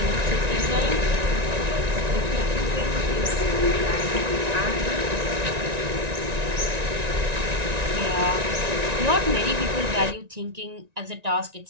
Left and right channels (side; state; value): left; late; 1.9 ms